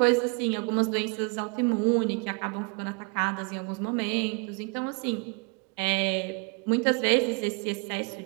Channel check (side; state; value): left; quieter; 32.7 dB